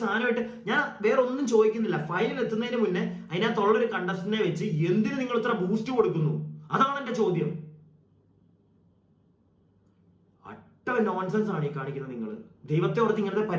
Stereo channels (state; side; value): identical; both; correlation 1.00